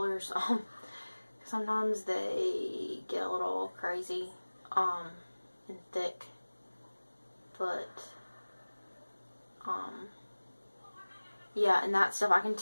Sometimes they get a little crazy and thick. But, yeah, and that stuff I can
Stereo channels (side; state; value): both; inverted; correlation -1.00